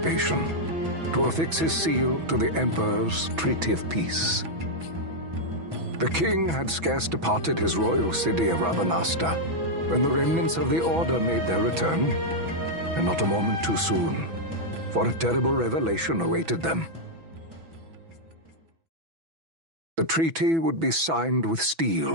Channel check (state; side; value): late; left; 6.1 ms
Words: to affix his seal to the Emperor's Treaty of Peace. The king had scarce departed his royal city of Rabanasta when the remnants of the Order made their return, and not a moment too soon, for a terrible revelation awaited them. The treaty would be signed with